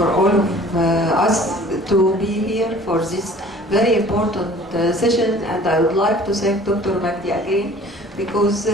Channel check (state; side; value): normal; both; correlation 0.49